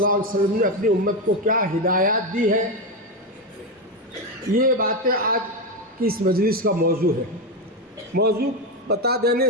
علیہ وسلم نے اپنی امت کو کیا ہدایات دی ہے، یہ باتیں آج کی اس مجلس کا موضوع ہے۔ موضوع بتا دینے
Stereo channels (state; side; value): normal; both; correlation 0.11